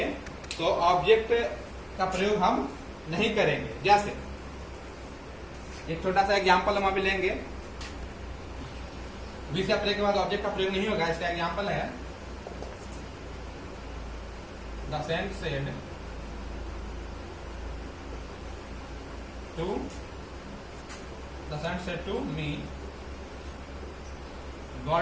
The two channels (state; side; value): identical; both; correlation 1.00